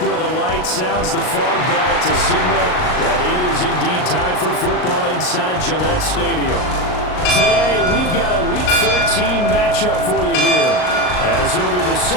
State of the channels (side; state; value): right; late; 38 ms